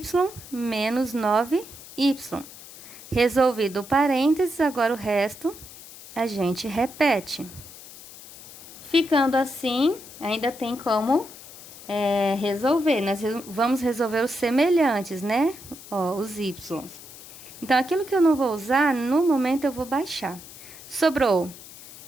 menos 9y. Resolvido o parênteses, agora o resto a gente repete. Ficando assim, ainda tem como resolver. Nós vamos resolver os semelhantes, né? Ó, os y. Então, aquilo que eu não vou usar, no momento eu vou baixar. Sobrou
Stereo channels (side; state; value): left; noise; hiss, 17 dB below the sound